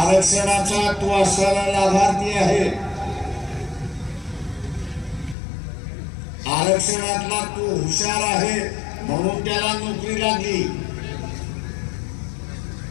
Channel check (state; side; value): drops out; right; at 5.4 s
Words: तो असणारा लाभार्थी आहे, आरक्षणातला तो हुशार आहे म्हणून त्याला नोकरी लागली।